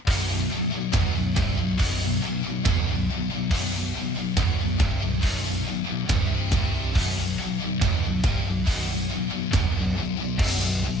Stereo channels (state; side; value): normal; both; correlation 0.59